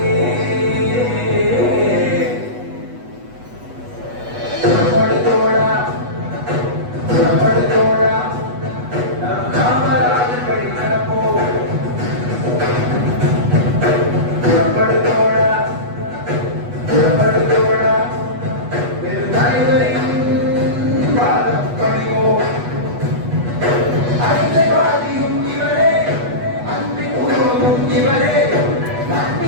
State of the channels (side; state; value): left; late; 8.2 ms